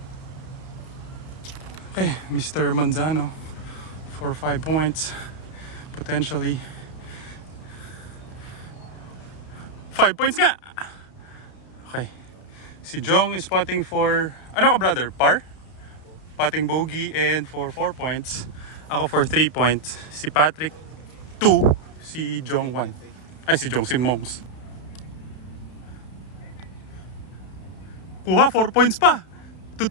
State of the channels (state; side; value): late; right; 32 ms